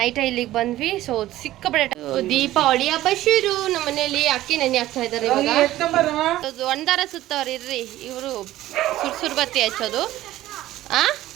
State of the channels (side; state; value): left; quieter; 15.0 dB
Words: ಇಲ್ಲಿಗೆ ಬಂದ್ವಿ. ಸೊ ಸಿಕ್ಕಾಪಟ್ಟೆ ದೀಪಾವಳಿ ಹಬ್ಬ ಶುರು. ನಮ್ಮ ಮನೆಯಲ್ಲಿ ಅಕ್ಕಿ ನೆನೆ ಹಾಕ್ತಾ ಇದ್ದಾರೆ ಇವಾಗ. ಒಂದಾರ ಸುತ್ತವ್ರು ಇರ್ರಿ, ಇವರು ಸುರ್ಸುರ್ ಬತ್ತಿ ಹಚ್ಚೋದು.